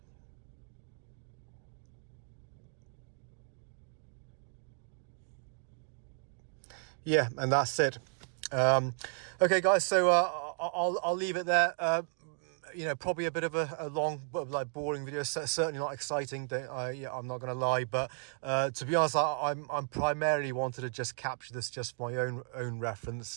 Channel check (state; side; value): silent; left; 55 dB below the other